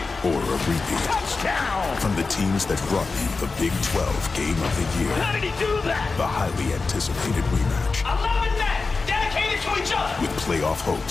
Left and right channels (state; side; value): quieter; right; 4.1 dB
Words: Or a repeat. Touchdown! From the teams that brought you the Big 12 Game of the Year. How did he do that? The highly anticipated rematch. 11 men dedicated to each other. With playoff